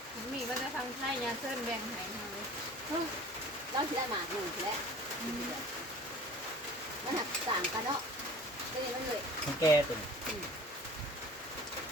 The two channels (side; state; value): both; normal; correlation 0.45